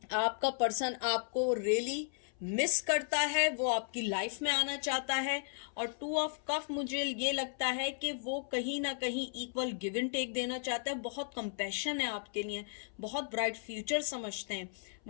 आपका पर्सन आपको रियली मिस करता है, वो आपकी लाइफ में आना चाहता है। और 2 ऑफ कफ मुझे ये लगता है कि वो कहीं ना कहीं इक्वल गिव एंड टेक देना चाहता है, बहुत कंपैशन है आपके लिए, बहुत ब्राइट फ्यूचर समझते हैं।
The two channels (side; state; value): right; silent; 54 dB below the other